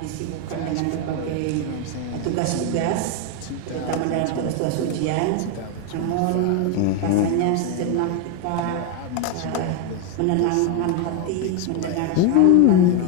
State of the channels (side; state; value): both; different; correlation 0.01